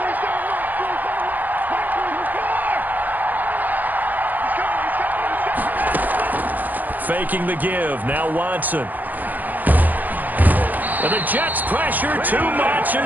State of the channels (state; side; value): late; left; 0.085 ms